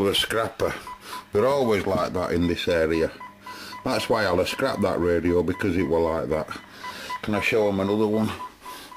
scrapper, they're always like that in this area. That's why I'll have scrapped that radio, because it were like that. Can I show them another one?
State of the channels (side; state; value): both; identical; correlation 1.00